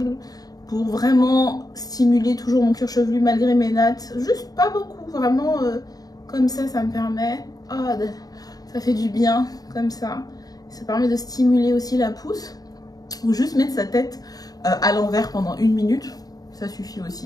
pour vraiment stimuler toujours mon cuir chevelu malgré mes nattes, juste pas beaucoup, vraiment comme ça me permet, ça fait du bien comme ça permet de stimuler aussi la pousse. Ou juste mettre sa tête à l'envers pendant 1 minute, ça suffit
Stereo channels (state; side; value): late; right; 0.18 ms